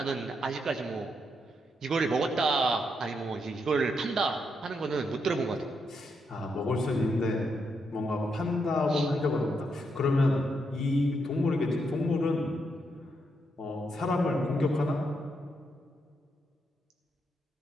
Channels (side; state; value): both; normal; correlation 0.80